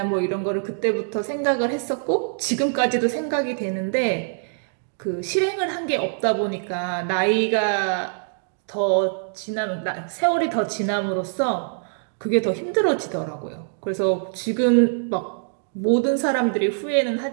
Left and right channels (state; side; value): silent; left; digital silence